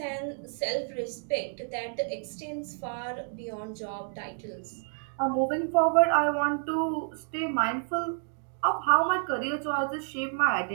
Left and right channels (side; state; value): left; silent; 58 dB below the other